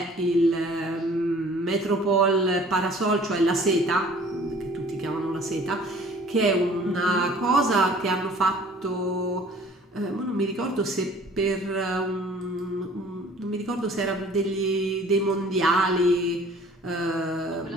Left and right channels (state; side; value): normal; both; correlation 0.51